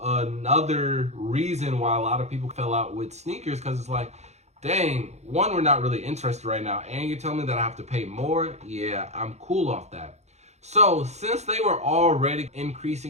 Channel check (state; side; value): late; left; 0.32 ms